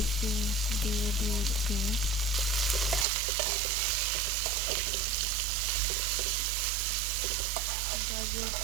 দিয়ে দিয়েছি। গাজর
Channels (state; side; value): drops out; left; at 3.1 s